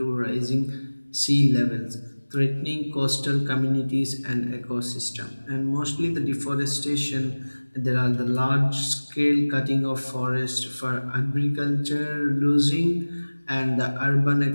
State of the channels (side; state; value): both; inverted; correlation -1.00